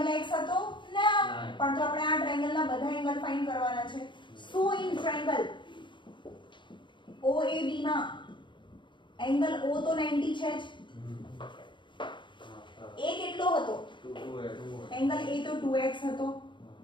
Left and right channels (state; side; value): late; right; 0.23 ms